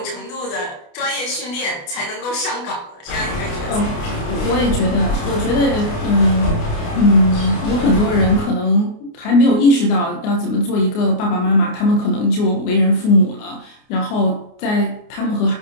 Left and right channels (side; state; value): right; late; 29 ms